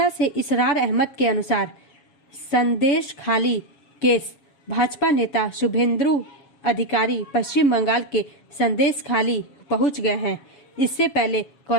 से इसरार अहमद के अनुसार संदेश खाली केस भाजपा नेता शुभेंदु अधिकारी पश्चिम बंगाल के संदेश खाली पहुंच गए हैं। इससे पहले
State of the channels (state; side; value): late; right; 7.2 ms